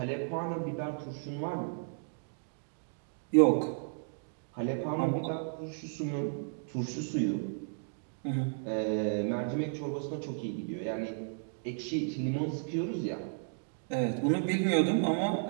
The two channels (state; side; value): silent; left; digital silence